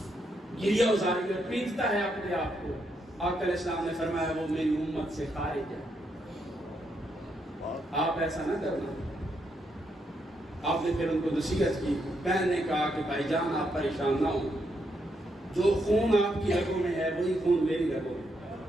گریہ ازاری اور پیٹتا ہے اپنے آپ کو, آقا علیہ السلام نے فرمایا وہ میری امت سے خارج ہے. آپ ایسا نہ کرنا. آپ نے پھر ان کو نصیحت کی. بہن نے کہا کہ بھائی جان آپ پریشان نہ ہوں, جو خون آپ کی رگوں میں ہے وہی خون میری رگوں میں.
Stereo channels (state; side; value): normal; both; correlation 0.79